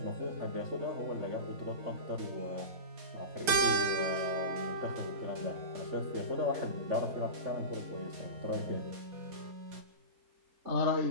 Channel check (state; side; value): late; left; 4.4 ms